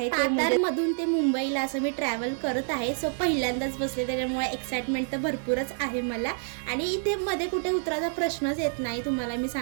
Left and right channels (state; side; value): silent; left; 59 dB below the other